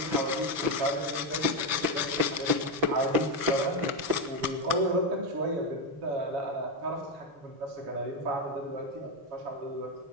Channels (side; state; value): left; late; 6.1 ms